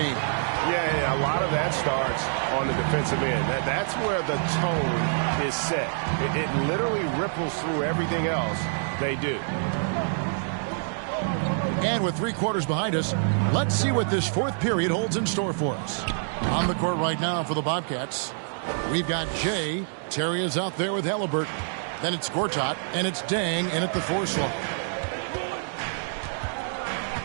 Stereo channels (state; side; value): silent; left; digital silence